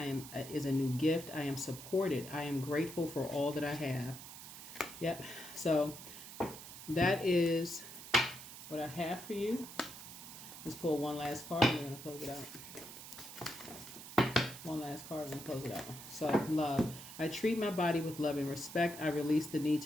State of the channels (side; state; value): right; noise; hiss, 13 dB below the sound